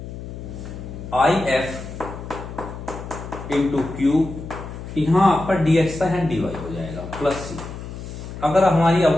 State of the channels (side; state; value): left; noise; hum, 10 dB below the sound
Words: I F into Q, यहां आपका dx था यहाँ dy हो जाएगा प्लस c। अगर हमारी